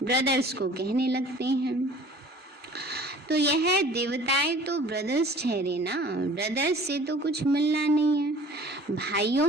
ब्रदर्स को कहने लगते हैं। तो यह देवताएं तो ब्रदर्स ठहरे ना, ब्रदर्स से तो कुछ मिलना नहीं है।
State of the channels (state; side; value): normal; both; correlation 0.48